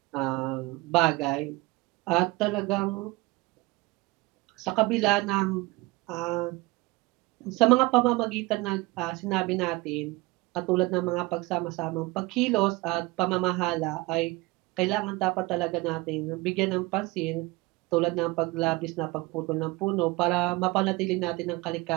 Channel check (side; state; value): left; quieter; 22.5 dB